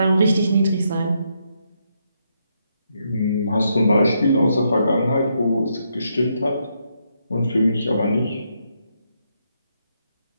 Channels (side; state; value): both; inverted; correlation -0.78